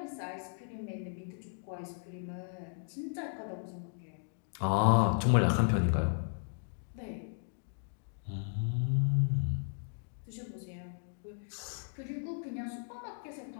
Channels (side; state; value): right; silent; digital silence